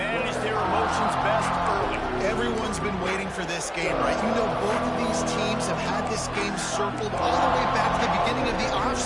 their emotions best early. Everyone's been waiting for this game, right? You know, both of these teams have had this game circled all the way back to the beginning of the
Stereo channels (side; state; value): both; identical; correlation 1.00